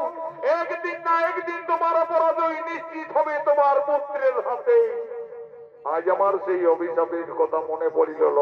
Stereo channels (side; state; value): both; identical; correlation 1.00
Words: একদিন না একদিন তোমার পরাজয় নিশ্চিত হবে তোমার পুত্রের হাতে। আজ আমার সেই অভিশাপের কথা মনে পড়িল